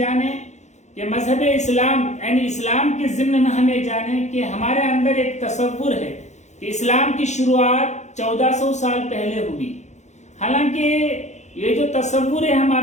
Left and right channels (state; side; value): late; right; 0.33 ms